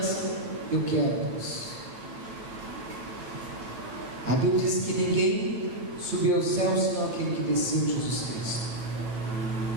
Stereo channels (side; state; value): left; late; 9.1 ms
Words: Eu quero, Deus. A Bíblia diz que ninguém subiu aos céus senão aquele que desceu, Jesus Cristo.